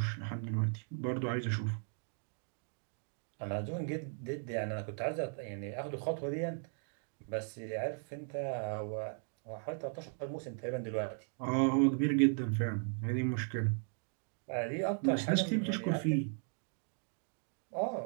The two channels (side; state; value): left; silent; 53 dB below the other